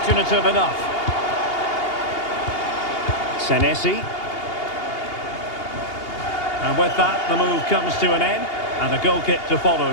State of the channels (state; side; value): late; right; 2.8 ms